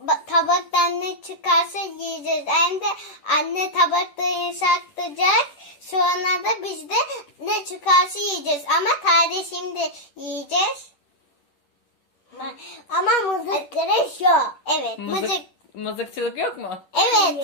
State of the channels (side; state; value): right; late; 10 ms